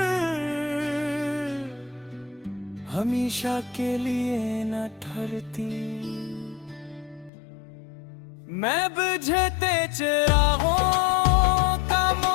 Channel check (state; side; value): drops out; right; at 7.3 s